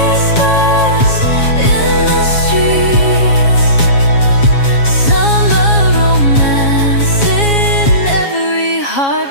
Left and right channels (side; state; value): right; late; 7.3 ms